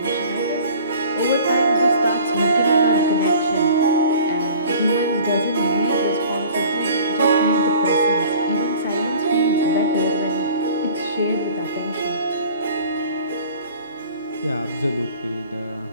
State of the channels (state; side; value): inverted; both; correlation -0.47